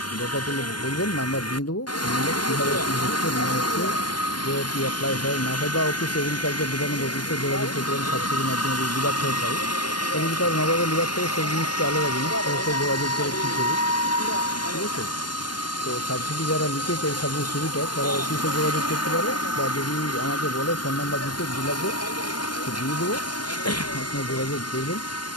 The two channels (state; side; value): late; right; 0.71 ms